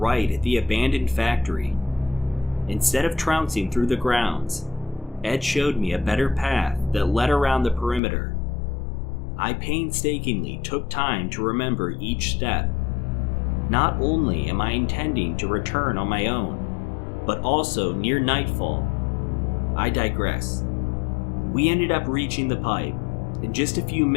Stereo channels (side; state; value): right; drops out; at 8.0 s